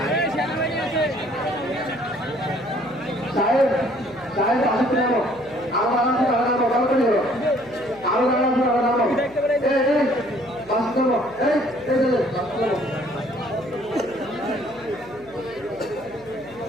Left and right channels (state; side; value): noise; left; hum, 24 dB below the sound